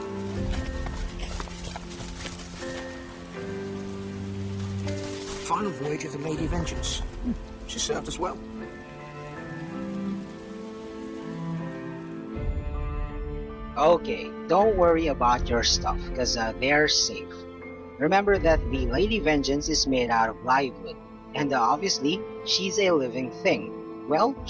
Final voyage of the Lady Vengeance. She served us well. Okay, don't worry about your stuff, cause they're safe. Remember that the Lady Vengeance is made out of live wood, and obviously, she's a living thing. Well,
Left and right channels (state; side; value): identical; both; correlation 1.00